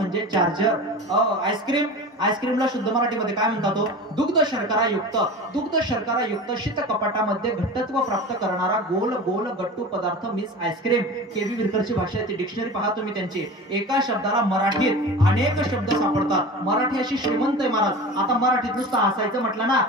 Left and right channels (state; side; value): normal; both; correlation 0.33